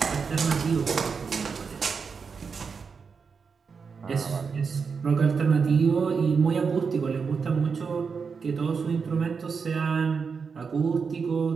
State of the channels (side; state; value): left; quieter; 5.5 dB